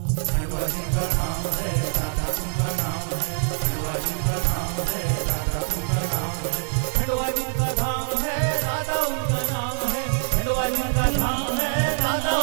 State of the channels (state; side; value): silent; left; digital silence